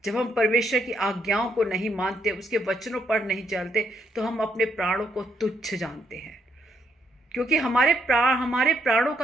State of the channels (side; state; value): both; normal; correlation 0.74